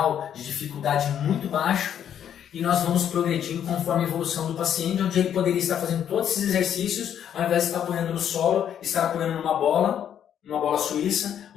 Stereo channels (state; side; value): quieter; right; 9.5 dB